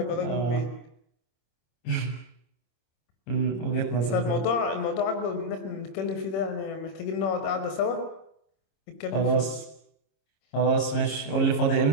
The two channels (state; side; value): late; right; 26 ms